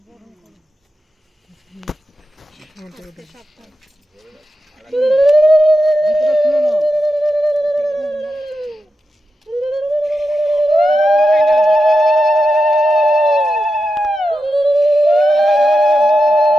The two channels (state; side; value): normal; both; correlation 0.88